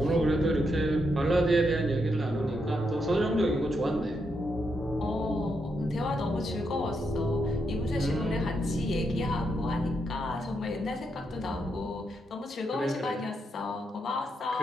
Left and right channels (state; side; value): normal; both; correlation 0.81